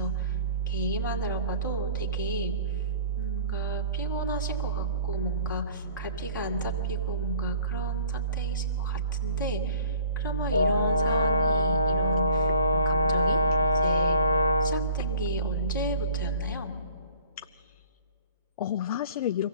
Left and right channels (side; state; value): both; inverted; correlation -0.50